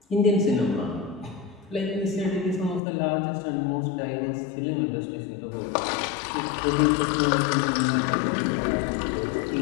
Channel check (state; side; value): drops out; right; at 2.8 s